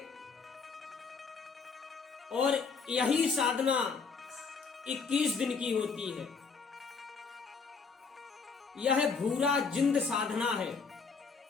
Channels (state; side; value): quieter; right; 5.2 dB